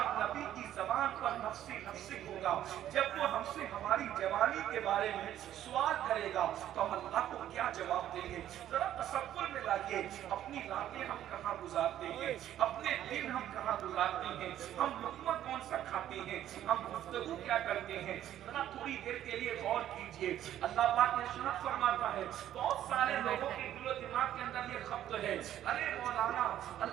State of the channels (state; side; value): quieter; left; 11.8 dB